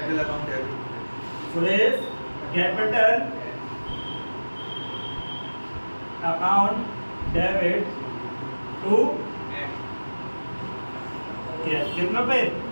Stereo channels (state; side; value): inverted; both; correlation -1.00